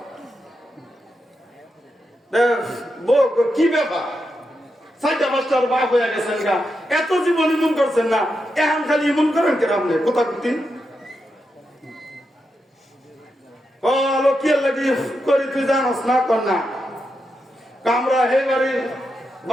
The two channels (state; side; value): normal; both; correlation 0.86